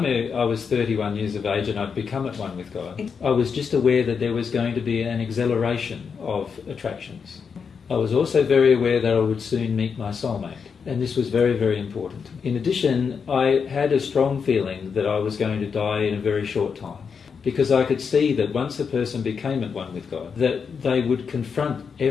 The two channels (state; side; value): quieter; right; 6.1 dB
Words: I was 31 years of age and I'd become at one with God, I was just aware that there was going to be an acceleration of attractions. I was also very aware that I would soon meet my soulmate, and this was very, very important. In addition, I had a strong feeling that I was going to die in a very short time, because I could see that once a person became at one with God, that they would confront